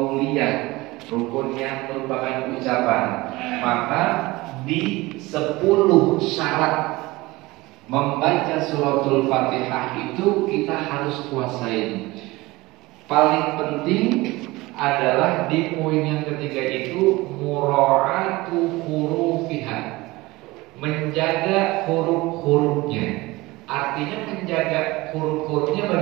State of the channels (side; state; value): left; quieter; 20.8 dB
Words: rukun yang merupakan ucapan. Maka di 10 syarat membaca suratul Fatihah itu kita harus kuasain. Paling penting adalah di poin yang ketiga itu mura'atu hurufiha, menjaga huruf-hurufnya. Artinya menjaga huruf-hurufnya